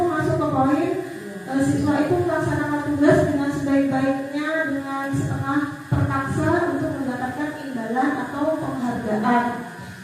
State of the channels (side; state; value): both; identical; correlation 1.00